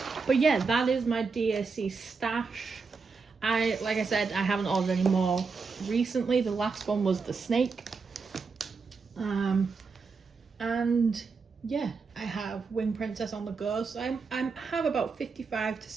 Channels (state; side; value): quieter; left; 4.8 dB